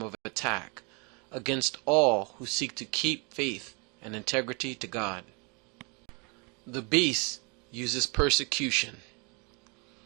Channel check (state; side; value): quieter; left; 32.2 dB